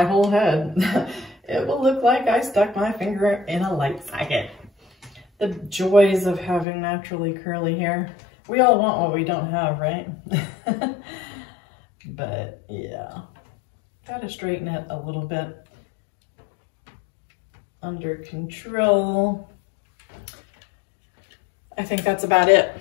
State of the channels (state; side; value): drops out; right; at 6.7 s